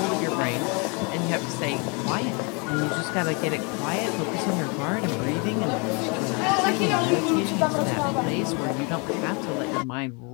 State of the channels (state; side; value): quieter; right; 32.4 dB